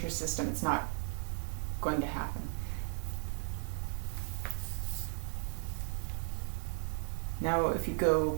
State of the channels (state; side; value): silent; left; digital silence